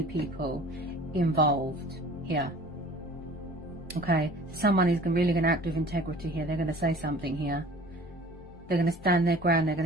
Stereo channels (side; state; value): both; normal; correlation 0.47